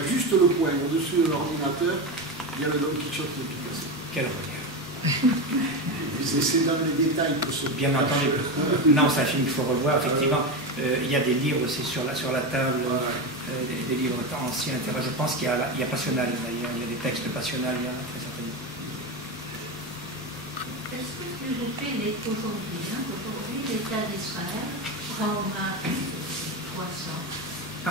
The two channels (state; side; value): normal; both; correlation 0.17